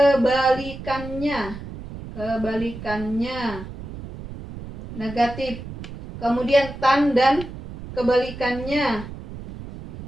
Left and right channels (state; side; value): noise; right; rumble, 12 dB below the sound